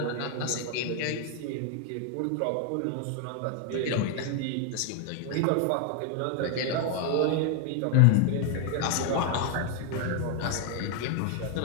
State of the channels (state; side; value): different; both; correlation 0.01